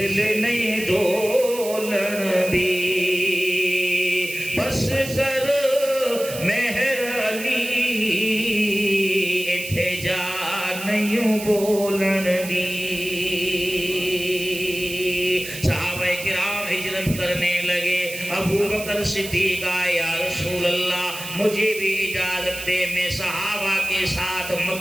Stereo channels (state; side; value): noise; right; hiss, 10 dB below the sound